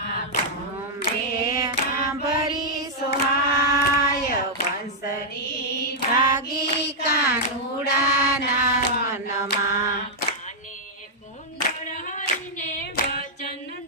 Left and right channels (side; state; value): both; normal; correlation -0.06